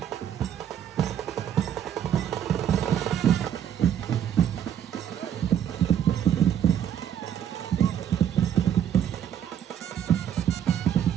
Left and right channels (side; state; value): left; quieter; 9.6 dB